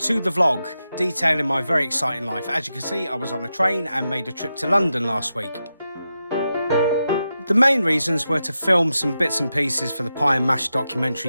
the vlog, detailing my very exciting life. As you can see, I was on a train and made a trip to London last week. The main reasons were to film some bits and pieces for the Pie and Mash documentary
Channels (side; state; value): both; inverted; correlation -0.89